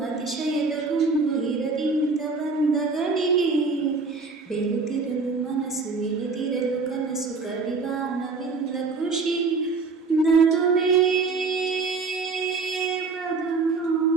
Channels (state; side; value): quieter; left; 4.3 dB